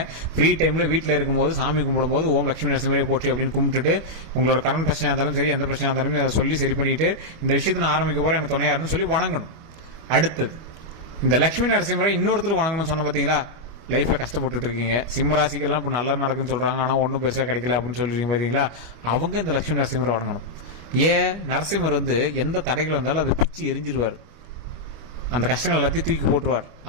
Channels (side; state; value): left; late; 25 ms